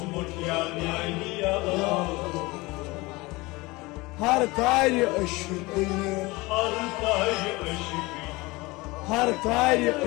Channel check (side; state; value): right; quieter; 22.8 dB